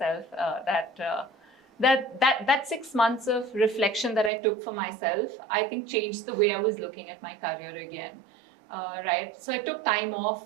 that 6 months of reflection that I took for myself, I think changed the way I was looking at my career again. Right. So I took time off.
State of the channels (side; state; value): left; drops out; at 4.3 s